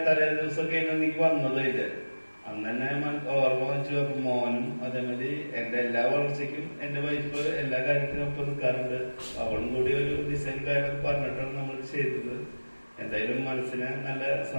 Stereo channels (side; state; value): both; inverted; correlation -1.00